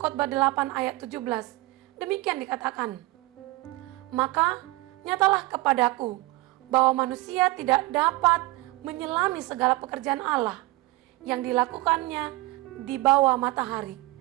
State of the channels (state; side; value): quieter; left; 20.5 dB